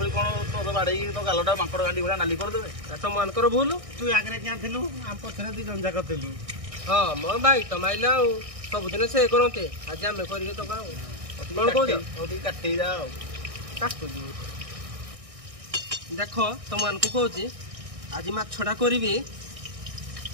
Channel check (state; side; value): late; left; 1.6 ms